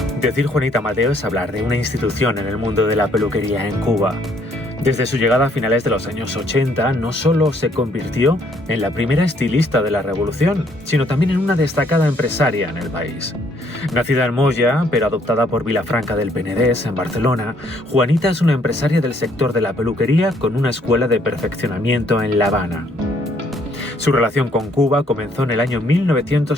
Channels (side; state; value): both; normal; correlation 0.67